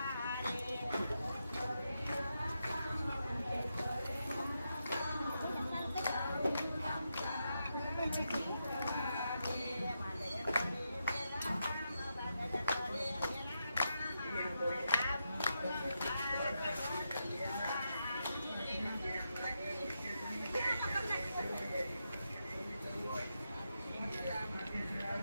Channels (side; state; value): both; inverted; correlation -0.86